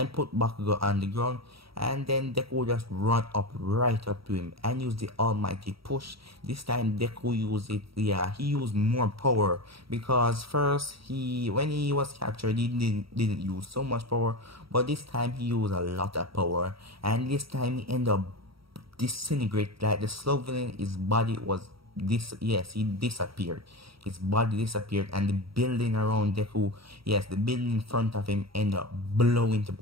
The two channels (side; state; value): left; late; 0.75 ms